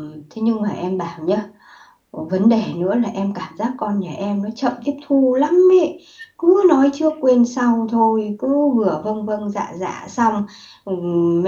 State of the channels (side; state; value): both; identical; correlation 1.00